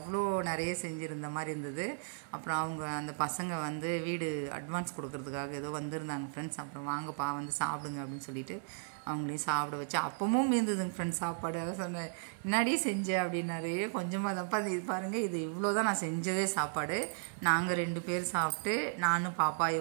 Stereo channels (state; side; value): silent; left; 54 dB below the other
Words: நிறைய செஞ்சுருந்த மாதிரி இருந்தது. அப்புறம் அவங்க அந்த பசங்க வந்து வீடு அட்வான்ஸ் கொடுக்கறதுக்காக ஏதோ வந்திருந்தாங்க ஃப்ரெண்ட்ஸ். அப்புறம் வாங்கப்பா வந்து சாப்பிடுங்க அப்படின்னு சொல்லிட்டு அவங்களையும் சாப்பிட வச்சு அப்பவும் மீந்ததுங்க ஃப்ரெண்ட்ஸ் சாப்பாடு. அதான் சொன்னேன் முன்னாடியே செஞ்சேன் அப்படின்னாரு. கொஞ்சமாக தப்பா இது பாருங்கள், இது இவ்வளோ தான் நான் செஞ்சதே சாப்பாடு. நாங்கள் 2 பேர் சாப்பிட்டு, நானும் பாப்பா